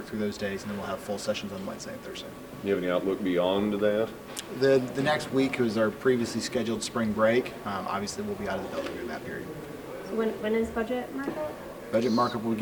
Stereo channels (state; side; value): identical; both; correlation 1.00